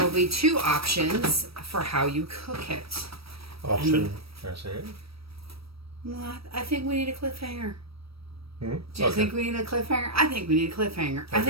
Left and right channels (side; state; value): left; late; 0.76 ms